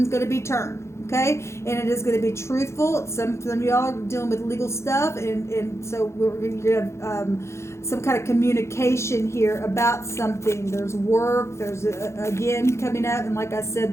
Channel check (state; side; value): late; right; 0.13 ms